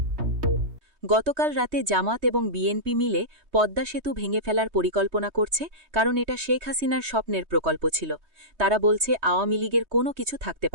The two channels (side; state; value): left; late; 3.2 ms